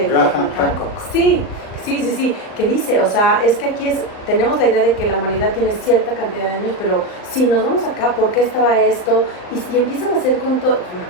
Graham Hancock. Sí, que dice, o sea, es que aquí tenemos la idea de que la humanidad tiene cierta cantidad de años, pero si nos vamos acá, ¿por qué estaba esto? Y empiezan a hacer con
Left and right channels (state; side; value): late; right; 39 ms